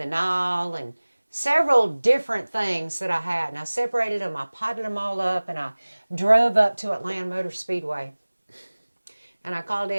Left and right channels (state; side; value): inverted; both; correlation -1.00